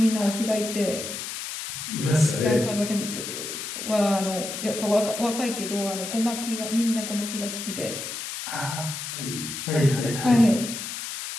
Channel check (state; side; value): noise; left; hiss, 6 dB below the sound